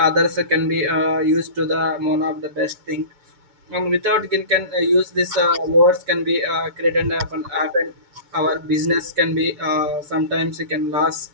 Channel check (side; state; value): left; late; 7.5 ms